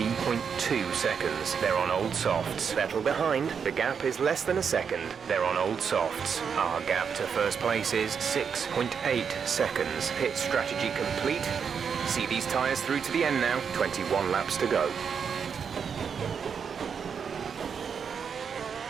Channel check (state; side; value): quieter; left; 6.7 dB